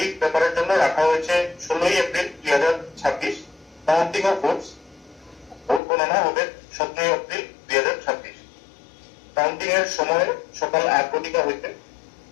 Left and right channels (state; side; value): drops out; right; at 5.8 s